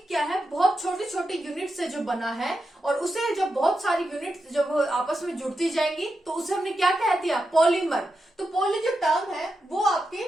क्या है, बहुत छोटी छोटी यूनिट से जो बना है, और उसे जब बहुत सारी यूनिट जब आपस में जुड़ती जाएंगी तो उसे हमने क्या कह दिया, पॉलीमर। तो पॉली जो टर्म है वो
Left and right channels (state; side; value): normal; both; correlation 0.88